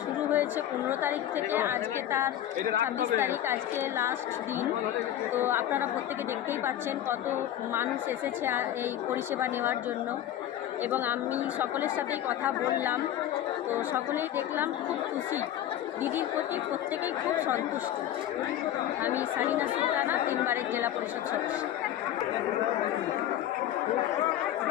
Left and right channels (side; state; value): right; quieter; 11.9 dB